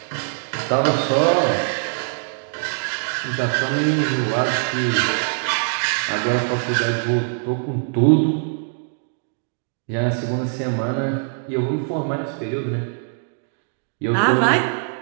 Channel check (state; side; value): silent; left; digital silence